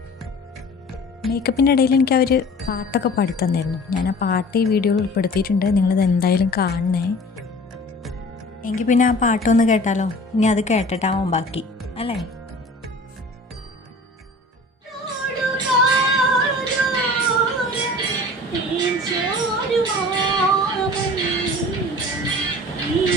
മേക്കപ്പിൻ്റെ ഇടയിൽ എനിക്ക് അവർ പാട്ടൊക്കെ പാടിത്തന്നായിരുന്നു. ഞാൻ ആ പാട്ട് ഈ വീഡിയോയിൽ ഉൾപ്പെടുത്തിയിട്ടുണ്ട്, നിങ്ങളിത് എന്തായാലും കാണണേ. എങ്കിൽ പിന്നെ ആ പാട്ടൊന്ന് കേട്ടാലോ? ഇനി അത് കേട്ടിട്ടാവും ബാക്കി, അല്ലേ?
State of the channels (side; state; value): both; normal; correlation 0.43